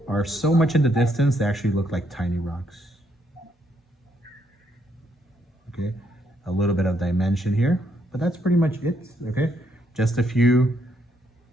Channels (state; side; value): normal; both; correlation 0.73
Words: are so much in the distance, they actually look like tiny rocks. Okay, a little bit of dimension here, but that's pretty much it, okay? Just a few